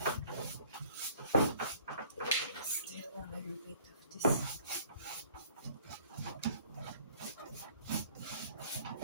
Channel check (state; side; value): inverted; both; correlation -0.54